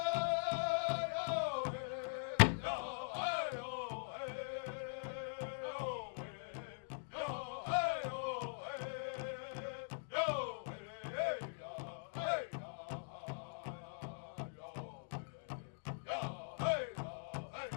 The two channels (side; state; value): right; silent; digital silence